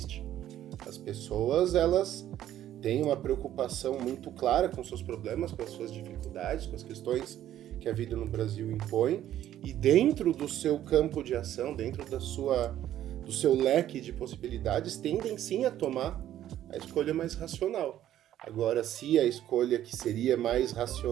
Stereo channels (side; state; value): left; quieter; 12.1 dB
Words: As pessoas, elas têm uma preocupação muito clara com seus problemas, com as suas dificuldades, com as questões que a vida no Brasil impõe, e dentro do seu campo de ação, dentro do seu leque de possibilidades, tendem sim a tomar a escolha mais racional. Agora, se a escolha que seria mais